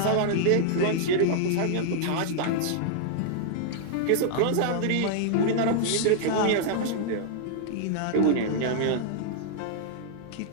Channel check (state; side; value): different; both; correlation -0.01